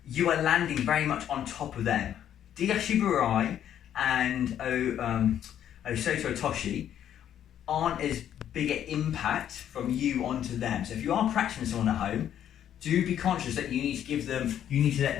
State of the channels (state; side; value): quieter; right; 10.2 dB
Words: are landing very much on top of them. Diashiburai and Osoto Toshi aren't as big an impact from you onto them. So if you are practicing someone at home, do be conscious that you need to let